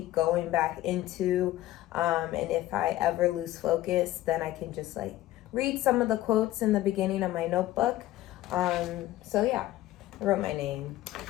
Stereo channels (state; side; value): quieter; right; 15.3 dB